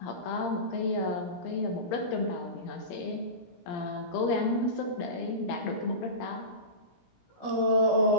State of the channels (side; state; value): right; late; 17 ms